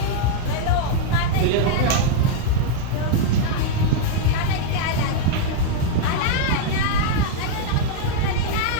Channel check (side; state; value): both; different; correlation -0.01